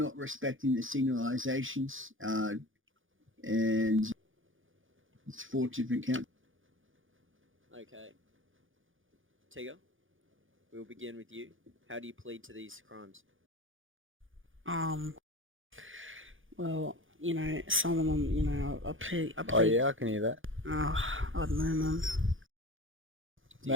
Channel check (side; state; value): left; late; 0.58 ms